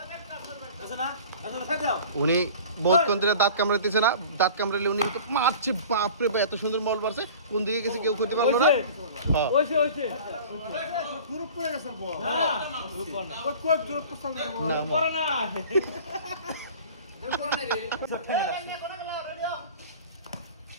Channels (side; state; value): both; inverted; correlation -0.43